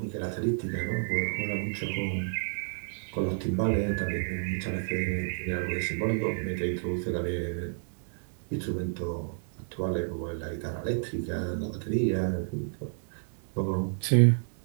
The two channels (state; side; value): silent; left; digital silence